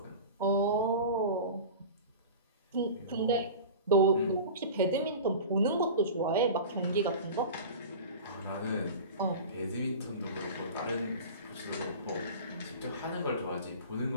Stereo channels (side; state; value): both; inverted; correlation -0.34